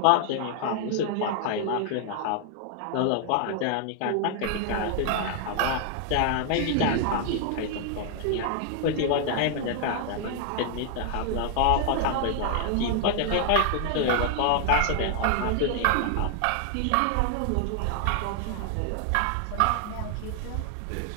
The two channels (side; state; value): both; different; correlation 0.00